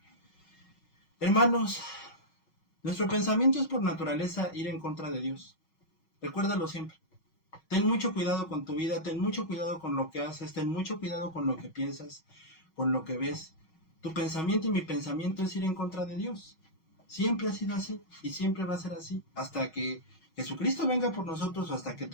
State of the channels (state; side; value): late; right; 6.3 ms